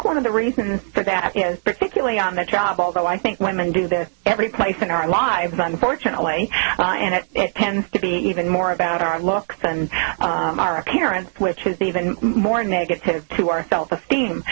one of the reasons for that is, particularly on the job, although I think women do this every place in our lives, unfortunately, and it tends to be even more about our looks and our appearance, which is even more negative to our self-esteem.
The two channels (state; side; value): silent; left; digital silence